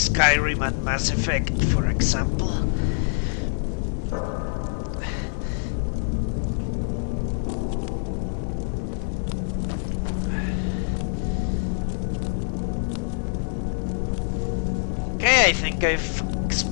and Mass Effect, for example. Okay, I think I've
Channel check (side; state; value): right; silent; 58 dB below the other